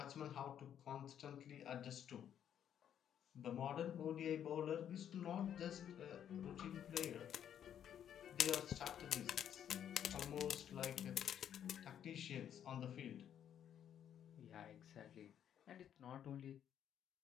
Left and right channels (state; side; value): quieter; right; 9.6 dB